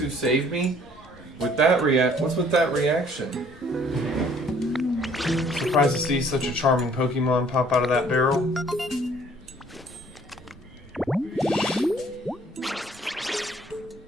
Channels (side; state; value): both; normal; correlation 0.58